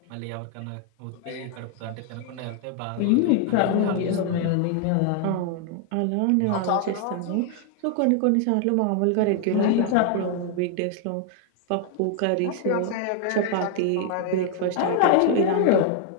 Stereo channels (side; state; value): both; different; correlation 0.00